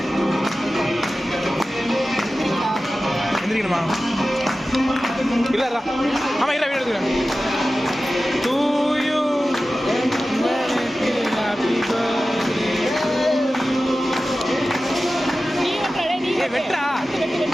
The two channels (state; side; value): normal; both; correlation 0.95